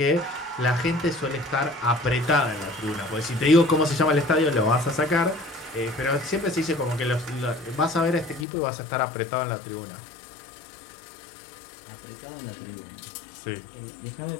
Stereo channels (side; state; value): right; drops out; at 8.5 s